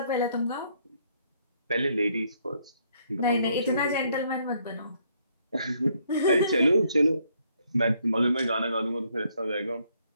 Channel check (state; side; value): inverted; both; correlation -0.69